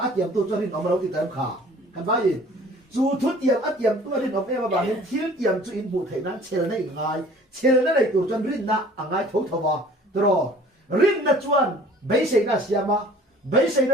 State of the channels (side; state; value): both; normal; correlation 0.50